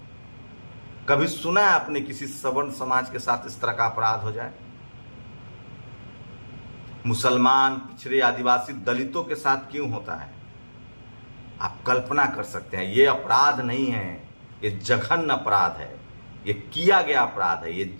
कभी सुना है आपने किसी सवर्ण समाज के साथ इस तरह का अपराध हो जाए? मुसलमान, पिछड़े, आदिवासी, दलितों के साथ क्यों होता है? आप कल्पना कर सकते हैं। ये अपराध नहीं है, ये जघन्य अपराध है, ये किया गया अपराध है, ये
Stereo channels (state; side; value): inverted; both; correlation -1.00